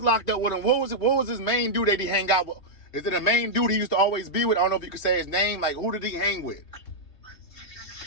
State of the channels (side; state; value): right; late; 3.2 ms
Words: locked up with him, what was his main dude that he hang out with? Is it a main dude he used to always be with? I don't know if you could say his name. Like, who did he hang with?